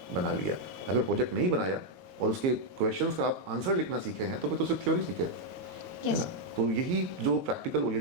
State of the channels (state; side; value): late; left; 20 ms